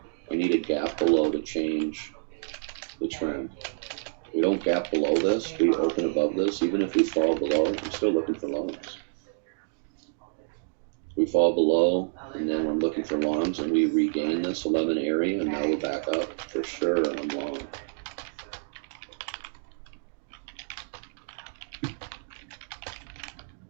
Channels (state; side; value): silent; left; digital silence